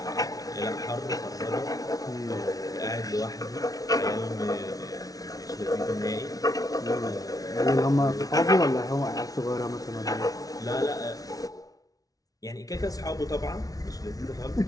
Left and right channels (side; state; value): right; late; 0.18 ms